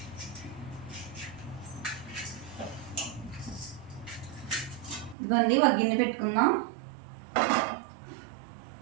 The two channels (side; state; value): left; drops out; at 5.2 s